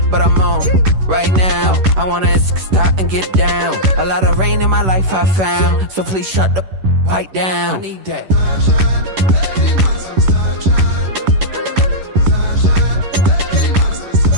but I'm on right now. I wanna stop and get down. A lot of rain in my life I found, so please shut the pipe down. I need that.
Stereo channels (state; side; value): late; left; 11 ms